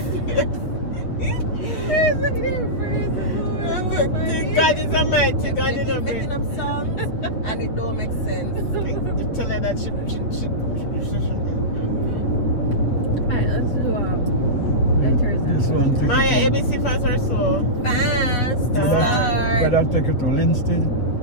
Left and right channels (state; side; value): late; right; 8.2 ms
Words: the Lord. God is almighty. God is Making almighty. up songs and it don't make sense. Tell her that she Alright, let's do letters This and one take Maya, it to, ABC fast or slow? Fast. better Start. take it to Linston.